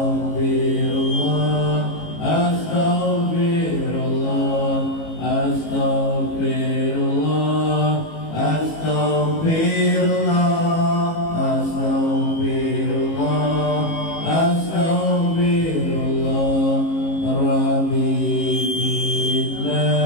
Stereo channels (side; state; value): right; late; 18 ms